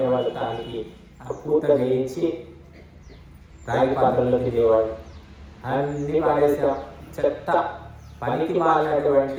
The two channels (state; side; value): identical; both; correlation 1.00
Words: వాళ్ళు, దానికి ఆ పూత వేయించి రాగి పాత్రలో తినేవాళ్ళు. అన్ని పారేసాం, చెత్త. పనికి